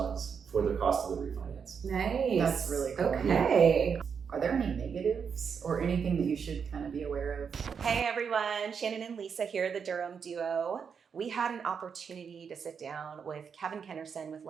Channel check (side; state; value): left; quieter; 6.5 dB